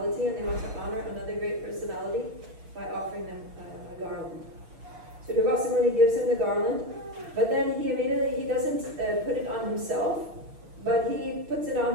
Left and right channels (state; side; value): late; left; 6.5 ms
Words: and they want to honor another great personality by offering them a garland. So Durvasa Muni gives him the garland, but then he doesn't put it on himself, but he puts it